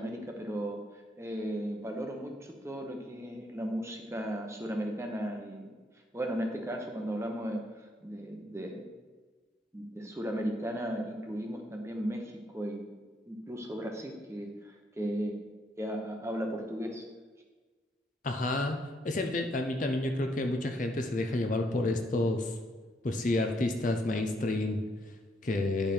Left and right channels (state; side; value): normal; both; correlation 0.73